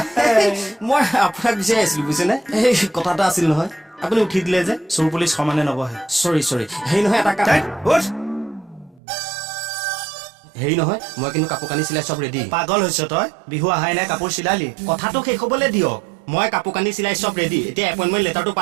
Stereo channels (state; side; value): drops out; left; at 9.0 s